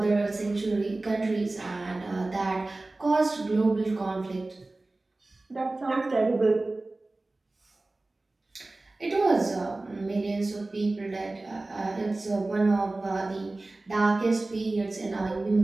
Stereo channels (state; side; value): quieter; left; 3.0 dB